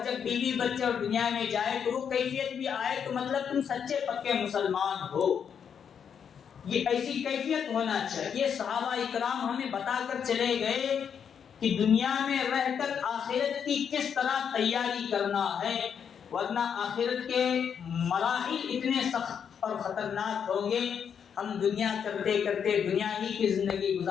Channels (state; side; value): quieter; right; 7.6 dB